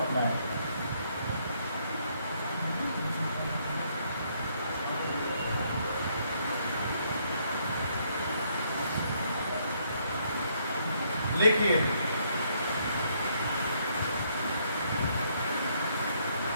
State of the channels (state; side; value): inverted; both; correlation -0.71